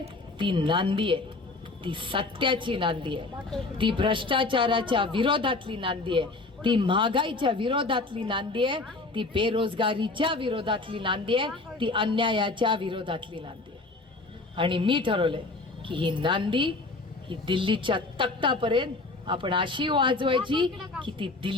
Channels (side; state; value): right; quieter; 3.4 dB